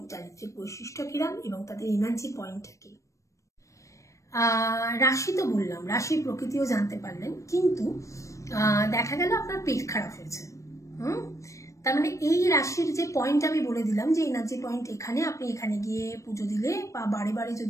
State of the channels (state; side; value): late; right; 0.15 ms